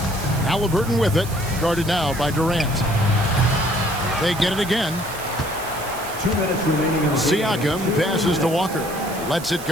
Halliburton with it, guarded now by Durant. They get it again. 2 minutes remaining. Siakam passes to Walker. Lets it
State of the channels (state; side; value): noise; right; hiss, 13 dB below the sound